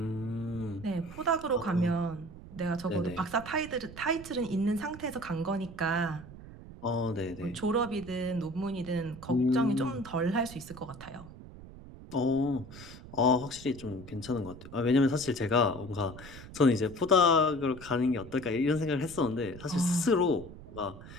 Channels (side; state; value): right; noise; rumble, 15 dB below the sound